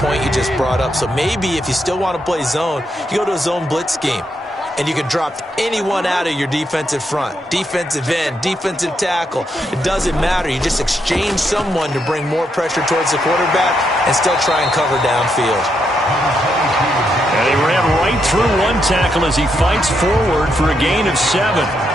you just brought up. So maybe if you still want to play zone, you go to a zone blitz scheme. And you can drop anyone out of your defensive front. Defensive end, defensive tackle. It doesn't matter. You just exchange someone to bring more pressure towards the quarterback and still try and cover downfield. And he ran right through one tackle as he fights forward for a gain of 7.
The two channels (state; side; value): normal; both; correlation 0.80